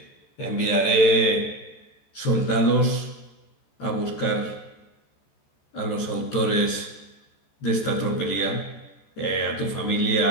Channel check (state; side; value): late; right; 14 ms